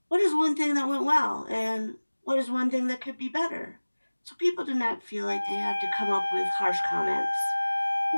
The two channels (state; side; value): inverted; both; correlation -1.00